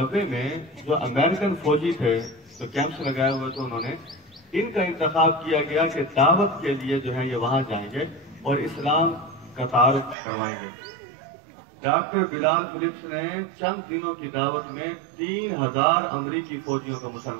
میں جو امریکن فوجی تھے جو کیمپس لگائے ہوئے تھے، انہوں نے ان کا انتخاب کیا گیا کہ دعوت کے لیے جو ہے یہ وہاں جائیں گے اور اسلام کا تعارف کروائیں گے. ڈاکٹر بلال فلپس نے چند دنوں کی دعوت میں 3000 امریکی فوجیوں کو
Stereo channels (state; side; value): drops out; left; at 10.2 s